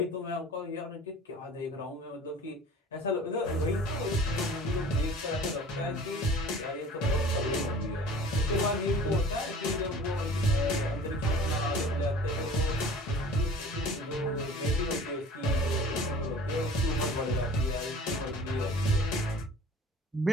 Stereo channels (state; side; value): normal; both; correlation 0.44